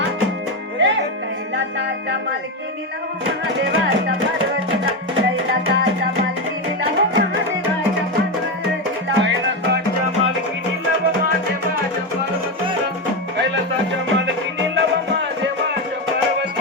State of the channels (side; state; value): both; normal; correlation 0.12